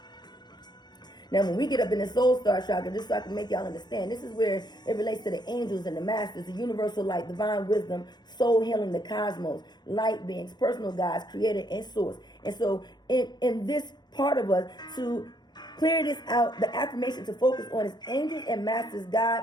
Now, when we get up in the soul star chakra, just so I can make y'all understand, this is where it relates to the angels and the masters, the universal light, divine wisdom, soul healing, the cosmos, light beings, personal guides, creator and source. And so in this part of us, to clear this out, the affirmation to focus on is angels and masters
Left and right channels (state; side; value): late; right; 0.21 ms